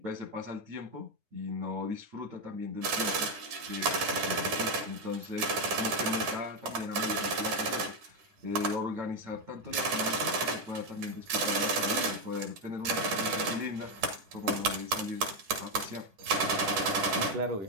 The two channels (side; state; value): left; late; 10 ms